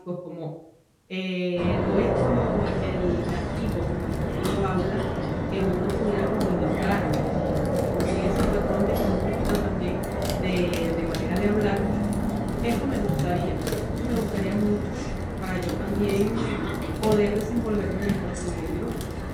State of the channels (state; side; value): identical; both; correlation 1.00